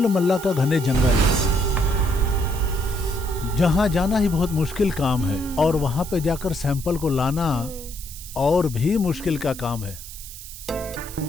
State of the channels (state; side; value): noise; right; hiss, 13 dB below the sound